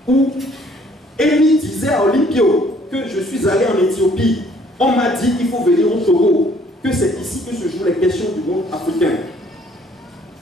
Où Émile disait à Olympio que je suis allé en Éthiopie. On m'a dit qu'il faut venir au Togo, que c'est ici que se jouent les questions du monde africain.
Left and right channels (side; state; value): both; normal; correlation 0.61